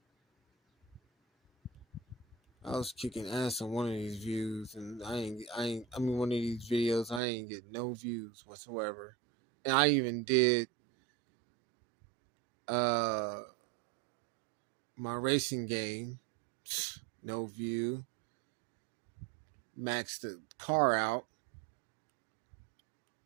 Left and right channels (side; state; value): left; drops out; at 7.2 s